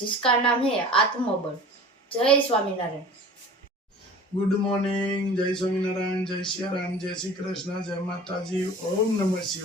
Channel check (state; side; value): normal; both; correlation 0.42